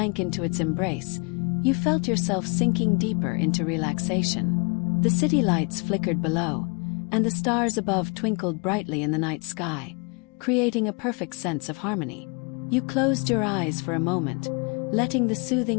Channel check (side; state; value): right; quieter; 33.4 dB